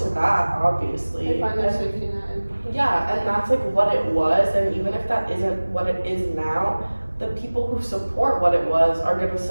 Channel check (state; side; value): inverted; both; correlation -1.00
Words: that, obviously. They find their And- safety net in. yeah, and that's like what it was, and even if that isn't what it is now, the people who support what it was are gonna